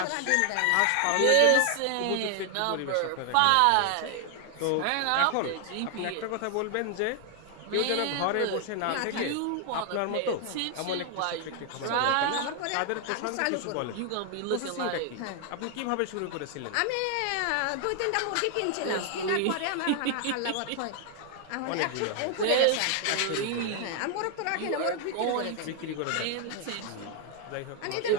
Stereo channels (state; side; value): different; both; correlation 0.00